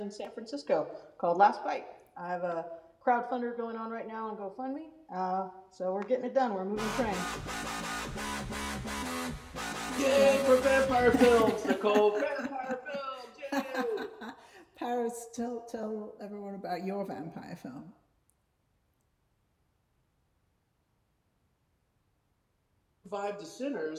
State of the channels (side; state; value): both; identical; correlation 1.00